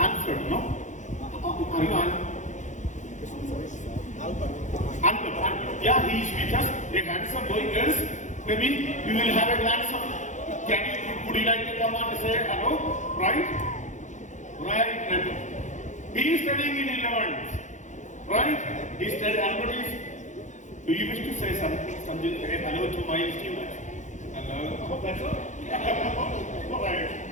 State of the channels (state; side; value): late; right; 0.35 ms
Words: no? Are you on? Albert. Yeah, he is with us. A handsome boy, girls. Maybe we will have a glance of, would you like to come on and say hello? Right? Right. He is studying in 11th. Right? He studied Albert is. Do you wish to say something hello to my students? Hello? Oh, that's all?